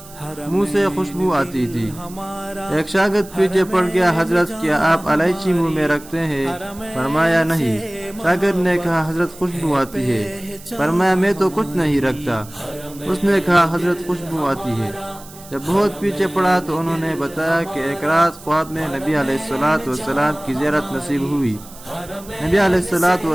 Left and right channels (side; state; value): right; noise; hiss, 19 dB below the sound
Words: منہ سے خوشبو آتی تھی۔ ایک شاگرد پیچھے پڑ گیا، حضرت کیا آپ الائچی منہ میں رکھتے ہیں؟ فرمایا نہیں۔ شاگرد نے کہا حضرت خوشبو آتی ہے۔ فرمایا میں تو کچھ نہیں رکھتا۔ اس نے کہا حضرت خوشبو آتی ہے۔ جب بہت پیچھے پڑا تو انہوں نے بتایا کہ ایک رات خواب میں نبی علیہ السلام کی زیارت نصیب ہوئی۔ نبی علیہ